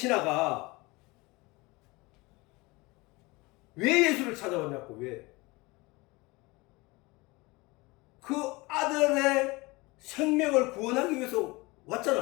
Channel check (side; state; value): right; quieter; 23.8 dB